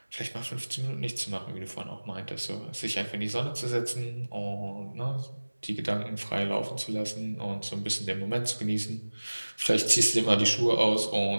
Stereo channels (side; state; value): both; inverted; correlation -1.00